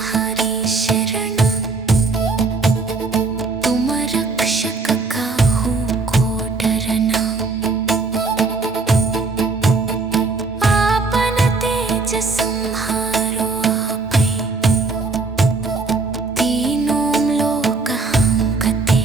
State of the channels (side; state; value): left; quieter; 3.9 dB